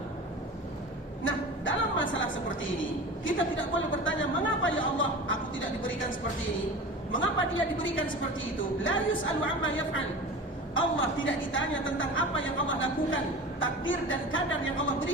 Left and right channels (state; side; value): normal; both; correlation 0.34